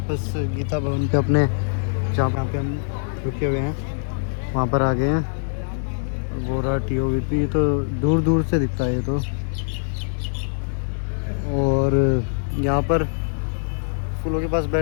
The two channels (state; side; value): silent; right; 61 dB below the other